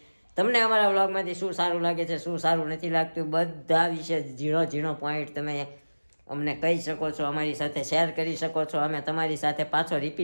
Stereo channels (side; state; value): both; inverted; correlation -1.00